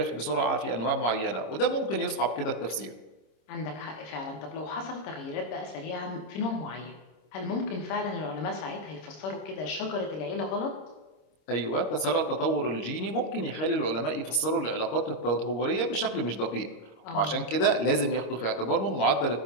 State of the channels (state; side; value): late; right; 26 ms